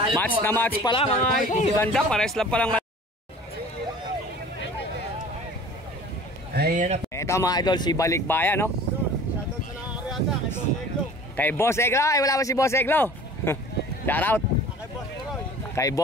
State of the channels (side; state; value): both; normal; correlation 0.45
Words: Match po na ang match ating pala mga Starboy. idol. Ganda. Pares lang palang. Ayan na po. Ito mga idol, si Balikbayan, no? Kay Boss Eglo. Ay, wala ba si Boss Eglo? Shout out. Kay